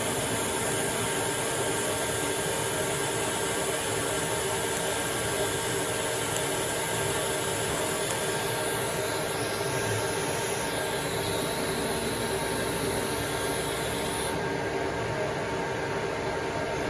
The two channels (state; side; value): identical; both; correlation 1.00